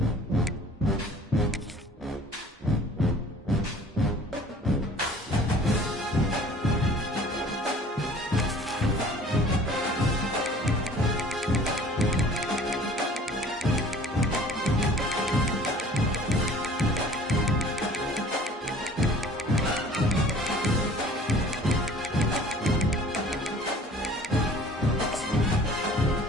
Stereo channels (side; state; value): both; normal; correlation 0.50